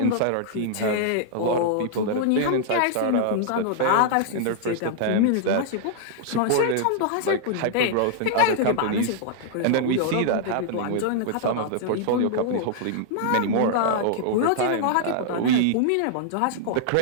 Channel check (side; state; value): both; different; correlation -0.01